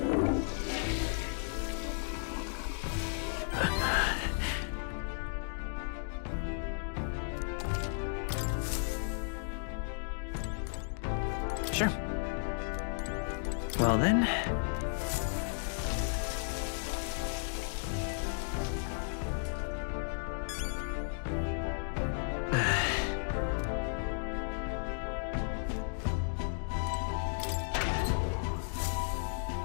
Sure. Well then.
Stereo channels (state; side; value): silent; right; digital silence